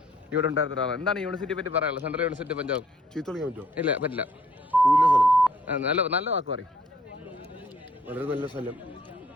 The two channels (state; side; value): normal; both; correlation 0.62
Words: ഇവിടെ ഉണ്ടായിരുന്ന ഒരാളാണ്. എന്താണ് യൂണിവേഴ്സിറ്റിയെ പറ്റി പറയാനുള്ളത്? Central university Punjab. ചീത്തളിക്കാൻ പറ്റുമോ? ഇല്ല, പറ്റില്ല. നല്ല വാക്ക് പറയും. വളരെ നല്ല സ്ഥലം.